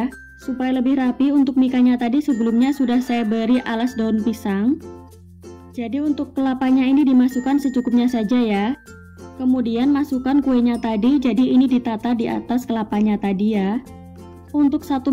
Supaya lebih rapi, untuk mikanya tadi sebelumnya sudah saya beri alas daun pisang. Jadi untuk kelapanya ini dimasukkan secukupnya saja ya. Kemudian masukkan kuenya tadi, jadi ini ditata di atas kelapanya tadi ya. Untuk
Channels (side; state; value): both; identical; correlation 1.00